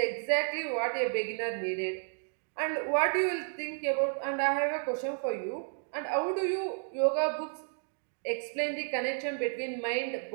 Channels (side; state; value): left; silent; 56 dB below the other